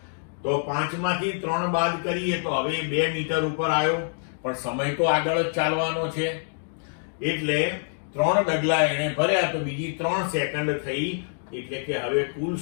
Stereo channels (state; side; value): silent; right; digital silence